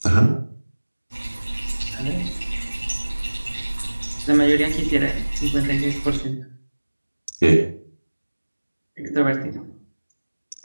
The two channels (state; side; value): inverted; both; correlation -1.00